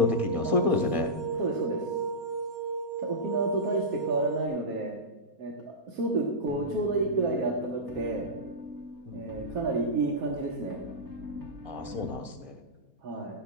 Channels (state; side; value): late; left; 4.3 ms